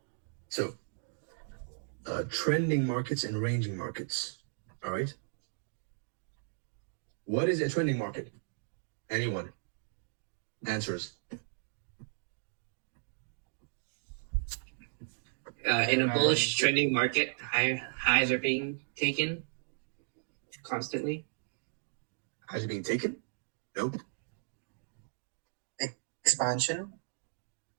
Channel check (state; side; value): silent; left; digital silence